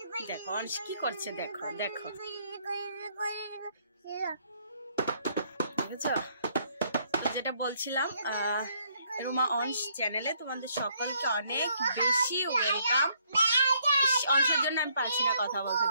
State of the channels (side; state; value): both; inverted; correlation -0.69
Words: দেখো অংশ কি করছে, দেখো দেখো, দেখেছো? তো যেটা বলছিলাম, রুমা অংশ চ্যানেলে তোমাদের সকলকে অনেক বেশি ওয়েলকাম। অংশের জন্য আমি পারছি না কথা বলতে,